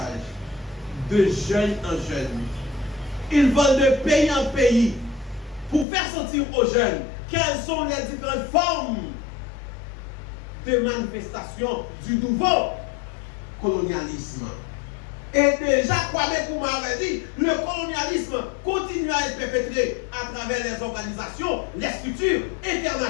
de jeune en jeune. Ils vont de pays en pays pour faire sentir aux jeunes quelles sont les différentes formes de manifestation du nouveau colonialisme. Et déjà, Kwame Nkrumah avait dit, le colonialisme continue à être perpétré à travers les organisations, les structures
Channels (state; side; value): drops out; right; at 5.9 s